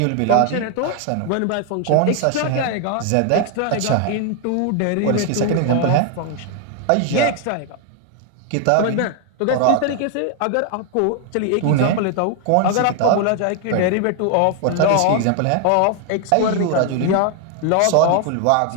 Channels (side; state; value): both; different; correlation 0.00